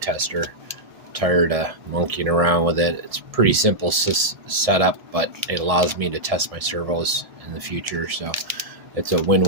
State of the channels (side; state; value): left; late; 1.7 ms